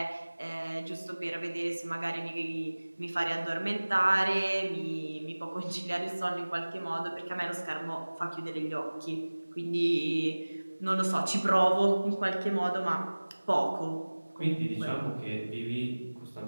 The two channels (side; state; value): both; inverted; correlation -1.00